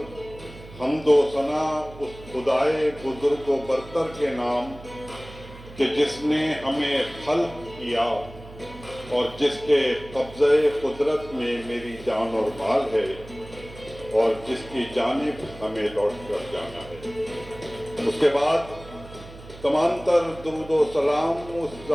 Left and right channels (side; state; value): right; noise; hum, 17 dB below the sound